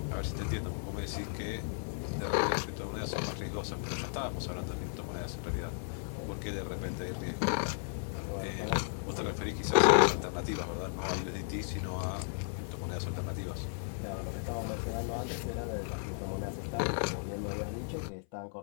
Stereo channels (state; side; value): silent; right; 54 dB below the other